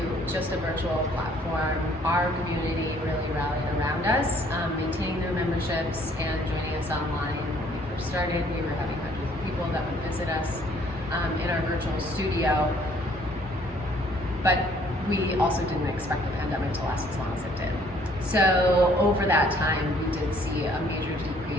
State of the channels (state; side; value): normal; both; correlation 0.61